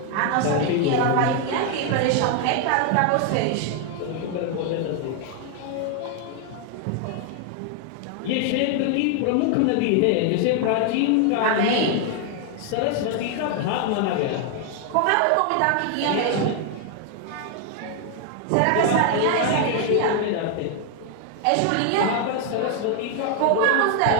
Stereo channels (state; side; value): different; both; correlation 0.00